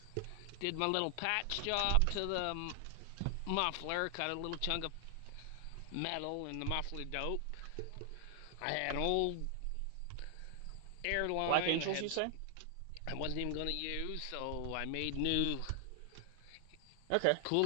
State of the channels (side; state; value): both; different; correlation 0.00